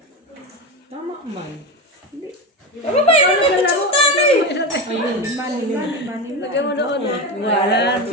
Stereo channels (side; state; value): both; normal; correlation 0.19